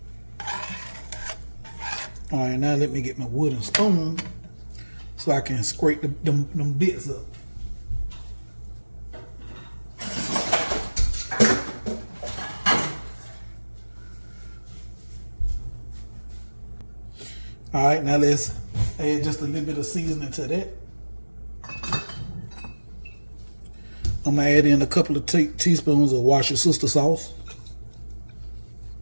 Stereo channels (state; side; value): inverted; both; correlation -1.00